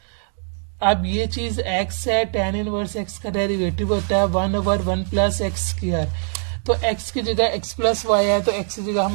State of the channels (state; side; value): silent; left; 58 dB below the other